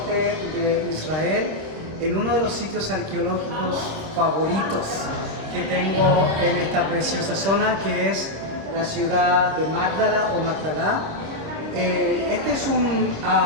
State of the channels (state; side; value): late; left; 26 ms